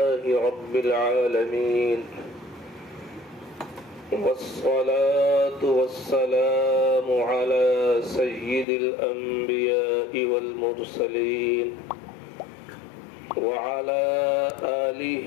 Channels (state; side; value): drops out; right; at 8.7 s